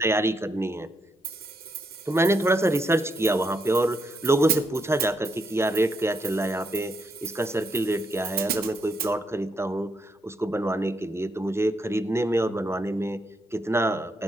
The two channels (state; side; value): normal; both; correlation 0.78